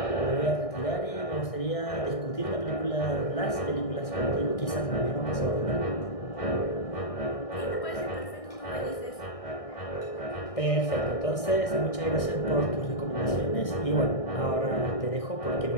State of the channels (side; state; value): right; late; 1.6 ms